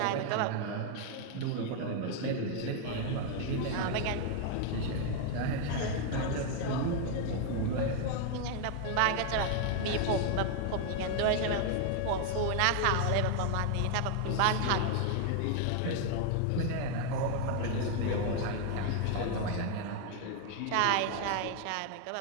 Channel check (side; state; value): both; different; correlation 0.00